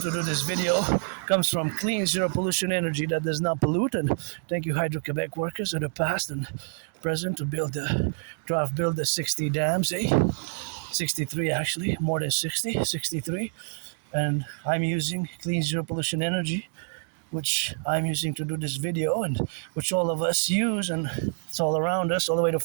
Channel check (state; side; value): silent; left; digital silence